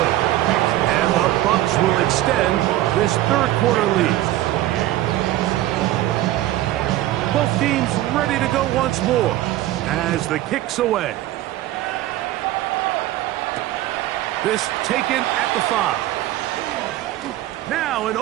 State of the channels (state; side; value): quieter; left; 15.0 dB